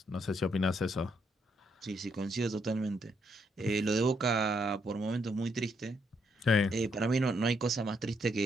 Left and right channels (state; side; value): normal; both; correlation 0.75